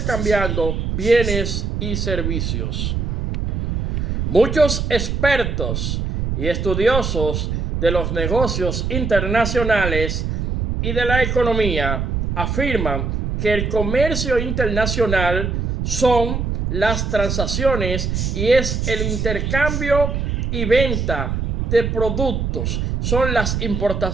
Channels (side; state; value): right; noise; rumble, 1 dB below the sound